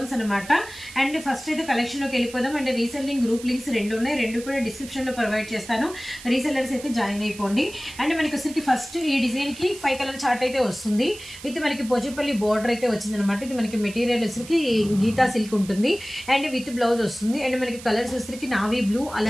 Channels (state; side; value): noise; right; hiss, 16 dB below the sound